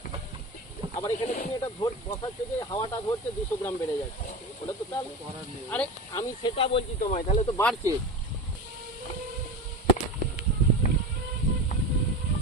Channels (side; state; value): both; normal; correlation 0.27